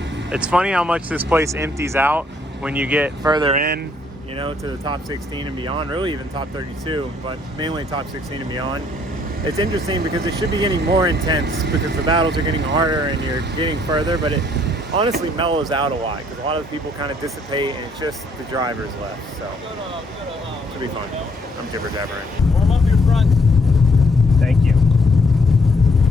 It's funny how much this place empties out when you get further in, you know, to the top 16 and beyond, really even top 32, but mainly top 16 and beyond. It's interesting because it should be getting more intense because the battles are getting harder and you're getting further, but it honestly mellows out a lot because a lot of the people kind of dissipate and it's just the drivers left. So it should be fun. I'm jibber jabbering. Warm up your front. Thank you.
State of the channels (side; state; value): both; normal; correlation 0.67